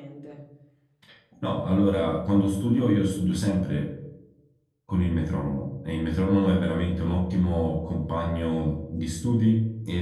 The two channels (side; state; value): both; identical; correlation 1.00